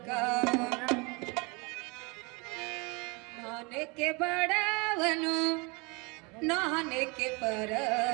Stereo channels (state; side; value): quieter; left; 28.8 dB